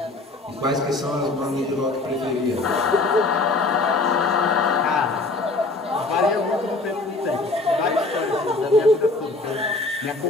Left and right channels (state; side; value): quieter; right; 3.3 dB